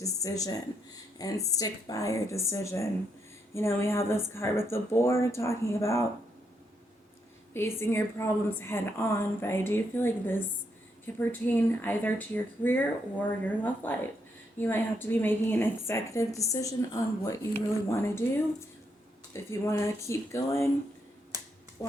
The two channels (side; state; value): both; normal; correlation 0.78